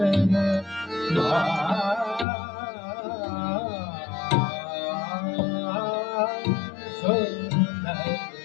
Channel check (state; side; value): drops out; right; at 2.2 s